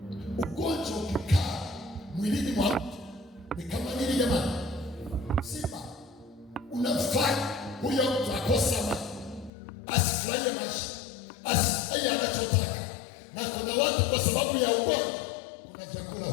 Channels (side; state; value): right; drops out; at 9.5 s